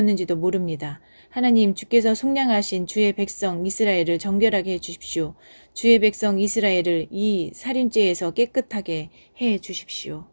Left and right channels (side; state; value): both; inverted; correlation -1.00